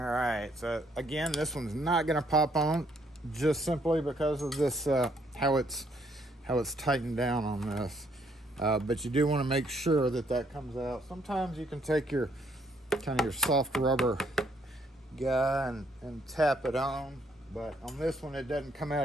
so again, this one's not gonna pop on just simply because of this how it's tightened down on this, but you do want to make sure that comes out. Sometimes you can take your kind of your soft rubber guy and tap it on, but on this one it doesn't come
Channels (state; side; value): normal; both; correlation 0.69